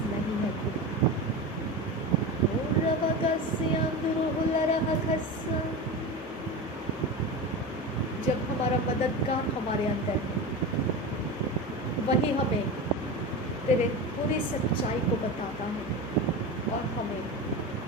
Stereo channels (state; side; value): normal; both; correlation 0.25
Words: नहीं है खुदा। जब हमारा मददगार हमारे अंदर है, वही हमें तेरे पूरी सच्चाई को बताता है और हमें